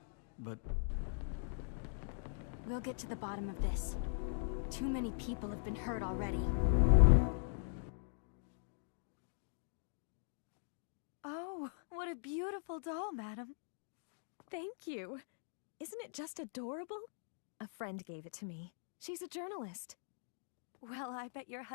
but... We'll get to the bottom of this. Too many people have been hurt already. Oh, what a beautiful doll, madam. Thank you. Isn't it just adorable? A friend gave it to me. She's a journalist. Well, I bet your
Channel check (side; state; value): right; silent; digital silence